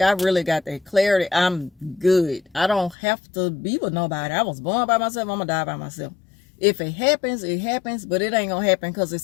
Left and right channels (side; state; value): right; drops out; at 3.0 s